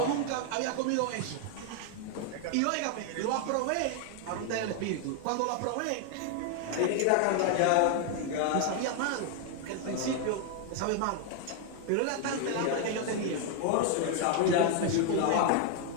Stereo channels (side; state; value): both; different; correlation 0.00